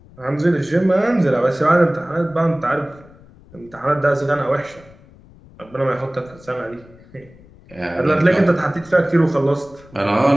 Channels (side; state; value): left; noise; rumble, 24 dB below the sound